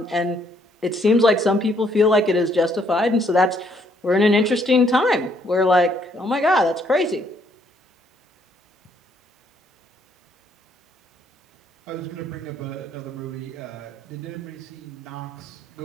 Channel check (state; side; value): normal; both; correlation 0.69